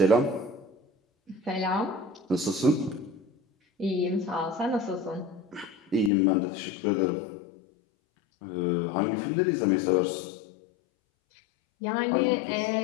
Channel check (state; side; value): drops out; right; at 6.1 s